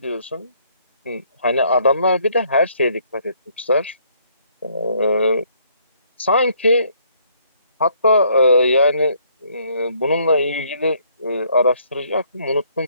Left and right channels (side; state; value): both; inverted; correlation -0.66